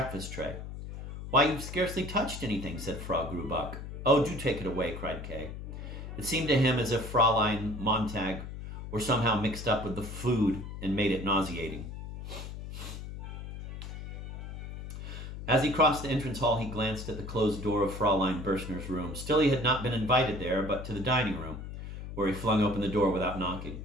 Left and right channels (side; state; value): left; noise; hum, 9 dB below the sound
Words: tray. Why, you've scarcely touched anything, said Frau Grubach. Oh, do take it away, cried Kay. It seemed to him as if Fräulein Montag were somehow mixed up with the food and made it nauseating. As he crossed the entrance hall, he glanced at the closed door of Fräulein Berstner's room. Still, he had not been invited there, but to the dining room, where he flung open the door without knocking.